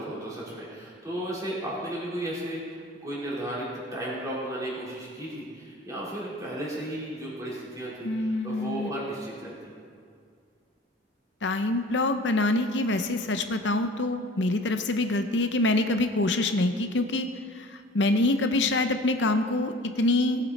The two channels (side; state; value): both; normal; correlation 0.44